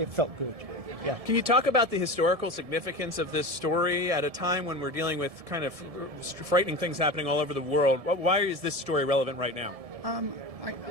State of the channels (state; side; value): late; left; 1.7 ms